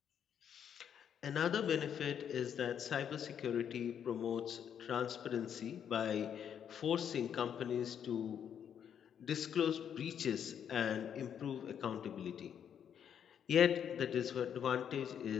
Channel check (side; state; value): right; quieter; 8.6 dB